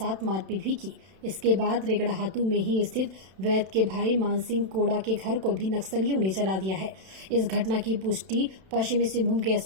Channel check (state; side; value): late; left; 31 ms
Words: मारपीट भी की। इसके बाद रेगड़ाहातू में ही स्थित वैद्य के भाई मानसिंह कोड़ा के घर को भी नक्सलियों ने जला दिया है। इस घटना की पुष्टि पश्चिमी सिंहभूम के